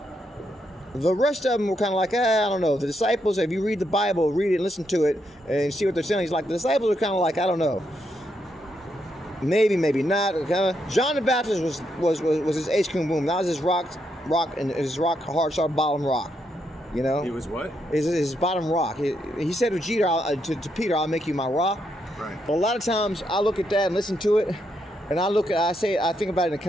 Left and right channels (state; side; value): normal; both; correlation 0.79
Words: The rest of them were kind of like, I don't know. The disciples, if you read the Bible, read it and listen to it and see what they're saying, he's like, the disciples are kind of like, I don't know. Maybe not. John the Baptist was his ace cum boom. That was his rock, and his rock hard start bottom rock. He was what? His bottom rock. He said to Peter, I'll make you my rock. Right. But a lot of times I look at that and listen to it, and I think about it in a